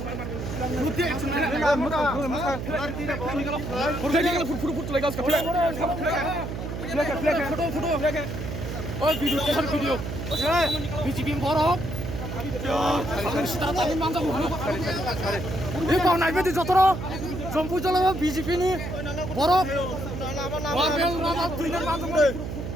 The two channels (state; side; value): noise; right; hum, 6 dB below the sound